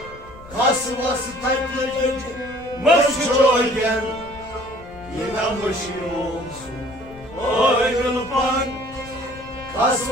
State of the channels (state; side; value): noise; left; rumble, 19 dB below the sound